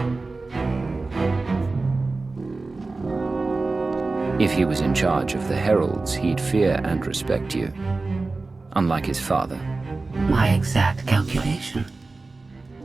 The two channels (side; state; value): left; quieter; 3.6 dB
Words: If he was in charge of the Heralds, he'd fear and respect you. Unlike his father. My exact calculation.